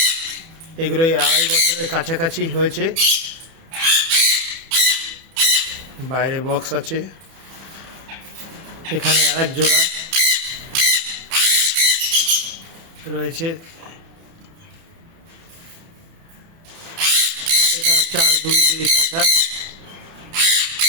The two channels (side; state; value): left; late; 30 ms